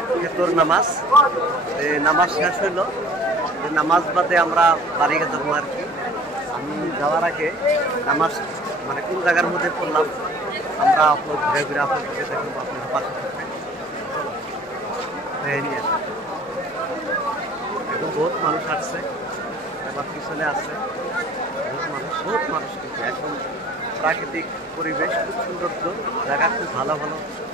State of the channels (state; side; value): normal; both; correlation 0.49